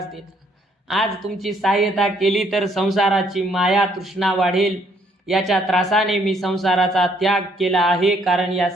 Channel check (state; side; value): normal; both; correlation 0.67